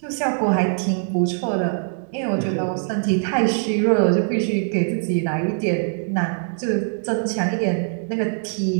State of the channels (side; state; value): left; silent; 60 dB below the other